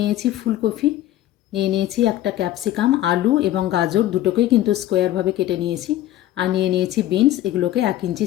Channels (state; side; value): quieter; right; 13.8 dB